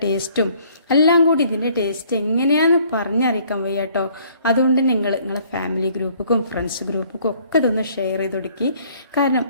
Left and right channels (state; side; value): inverted; both; correlation -0.60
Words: ടേസ്റ്റും എല്ലാം കൂടി ഇതിൻ്റെ ടേസ്റ്റ് എങ്ങനെയാണെന്ന് പറഞ്ഞറിയിക്കാൻ വയ്യ കേട്ടോ. അതുകൊണ്ട് നിങ്ങളെ ഫാമിലി ഗ്രൂപ്പുക്കും ഫ്രണ്ട്സ് ഗ്രൂപ്പുക്കും ഒക്കെ ഇതൊന്ന് ഷെയർ ചെയ്ത് കൊടുക്കി. കാരണം